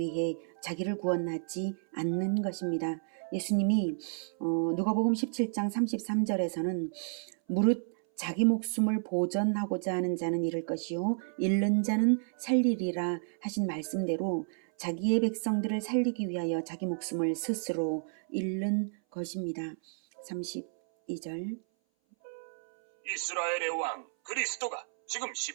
자기를 구원하지 않는 것입니다. 예수님이 누가복음 17장 33절에서는 무릇 자기 목숨을 보전하고자 하는 자는 잃을 것이요 잃는 자는 살리리라 하신 말씀대로 자기의 백성들을 살리기 위하여 자기 목숨을 스스로 잃는 것입니다. 32절 이스라엘의 왕 그리스도가 지금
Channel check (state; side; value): silent; left; 57 dB below the other